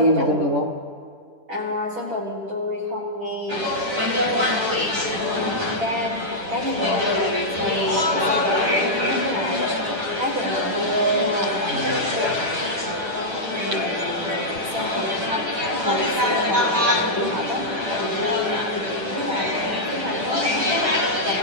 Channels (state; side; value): late; left; 10 ms